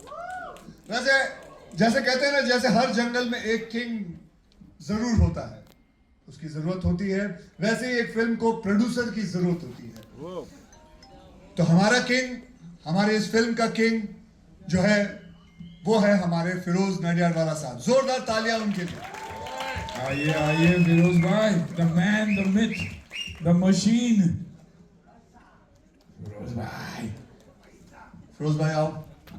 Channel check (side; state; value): both; identical; correlation 1.00